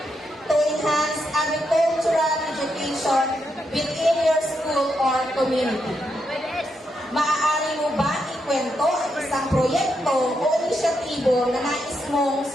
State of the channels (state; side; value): normal; both; correlation 0.82